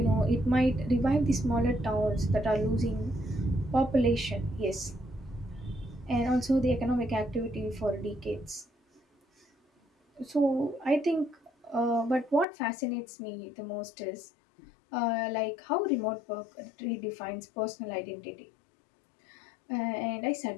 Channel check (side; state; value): right; drops out; at 12.5 s